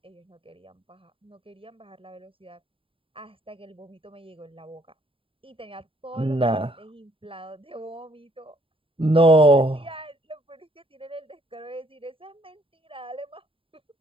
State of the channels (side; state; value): left; late; 0.26 ms